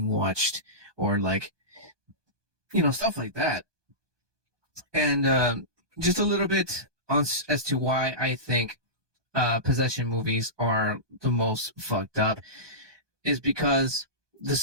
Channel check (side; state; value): left; late; 1.2 ms